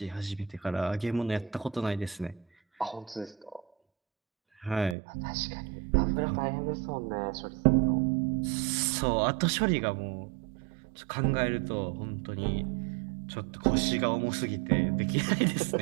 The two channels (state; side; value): drops out; left; at 5.0 s